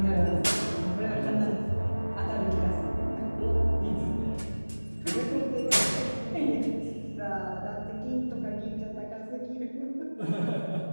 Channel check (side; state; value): both; inverted; correlation -1.00